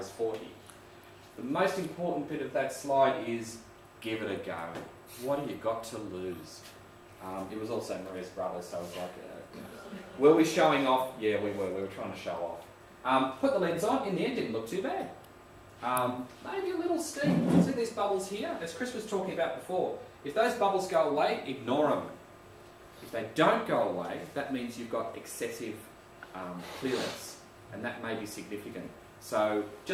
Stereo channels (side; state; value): both; identical; correlation 1.00